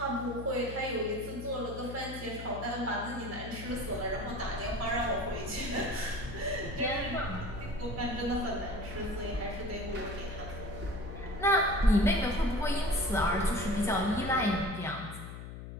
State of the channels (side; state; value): left; noise; hum, 10 dB below the sound